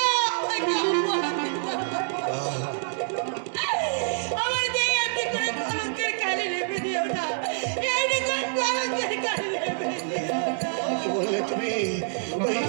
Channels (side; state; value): left; silent; digital silence